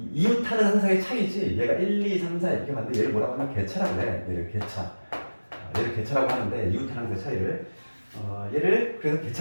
항사의 차이지. 얘가 1, 2, 3, 4 이렇게 봤는데 얘를 뭐라고 하면 개차라고 해. 얘를 개차라고 하는데 이웃하는 항사의 차이를 얘를 그래서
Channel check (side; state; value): both; inverted; correlation -1.00